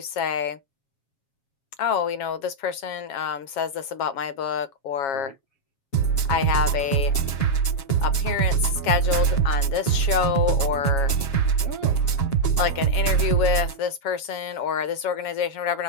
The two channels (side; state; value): right; late; 7.3 ms